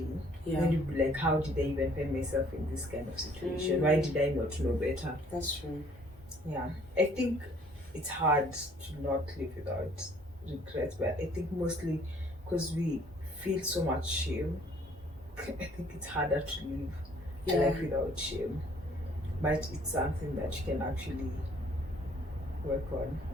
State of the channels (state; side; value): normal; both; correlation 0.59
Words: Then you'd be like, how did I even find myself in this kind of situation? Why did I not know better? That's true. Yeah. I think it's hard to not live without regret, but I think mostly because we feel so much shame, I think it's harder to live a life without shame. But it's something that you can actually work on.